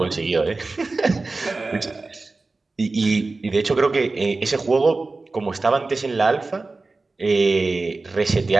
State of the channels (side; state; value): left; quieter; 3.6 dB